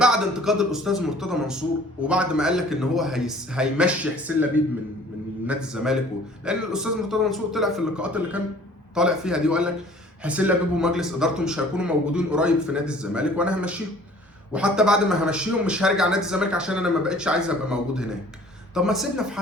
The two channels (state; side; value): normal; both; correlation 0.51